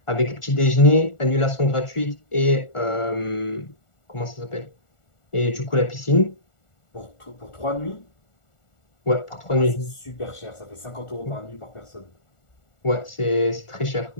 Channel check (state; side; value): late; right; 1.4 ms